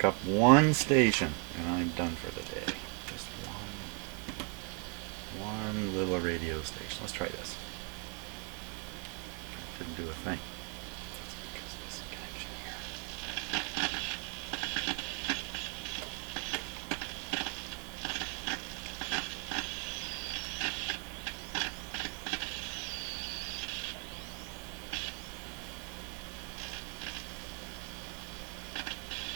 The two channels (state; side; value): quieter; left; 37.0 dB